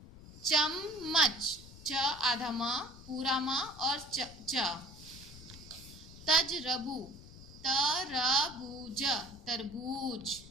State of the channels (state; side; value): noise; left; rumble, 17 dB below the sound